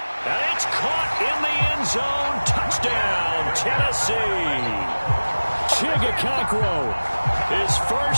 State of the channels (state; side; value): inverted; both; correlation -1.00